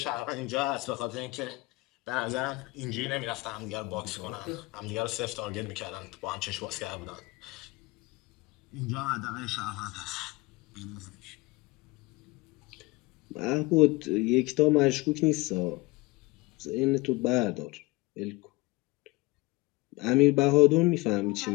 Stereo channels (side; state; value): right; quieter; 23.1 dB